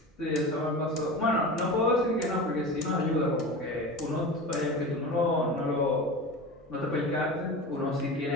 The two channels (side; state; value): both; normal; correlation 0.30